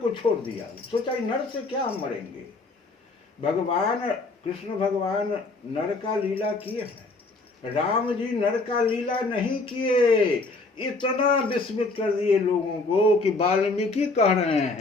छोड़ दिया। सोचा नर से क्या हम मरेंगे। भगवान कृष्ण भगवान नर का लीला किए हैं, राम जी नर का लीला नहीं किए। इतना विस्मित कर दिए लोगों को कि वाल्मीकि कह रहे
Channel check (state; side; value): quieter; right; 3.5 dB